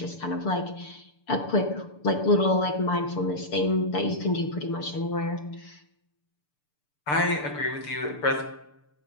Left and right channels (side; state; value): right; late; 6.8 ms